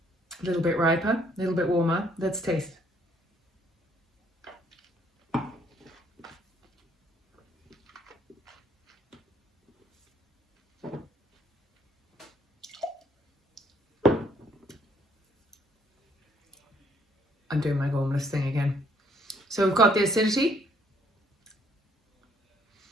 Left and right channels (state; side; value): normal; both; correlation 0.66